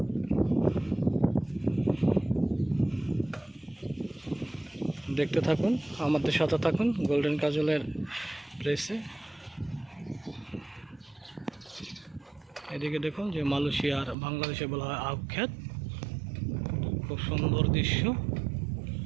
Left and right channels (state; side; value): drops out; left; at 14.2 s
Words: দেখতে থাকুন, আমাদের সাথে থাকুন গোল্ডেন কাজলের প্লেসে। এদিকে দেখুন যে মালয়েশিয়ার বাংলাদেশে বলা হয় আবখ্যাত, খুব সুন্দর দৃশ্য।